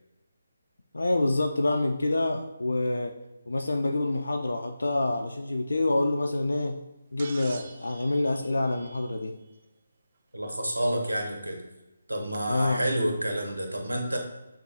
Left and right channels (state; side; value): inverted; both; correlation -0.93